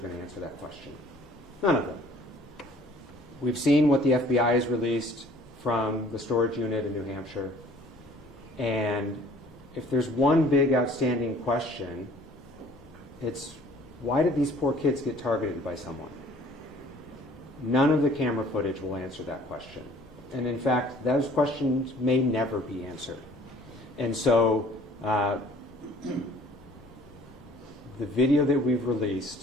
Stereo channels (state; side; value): noise; right; rumble, 27 dB below the sound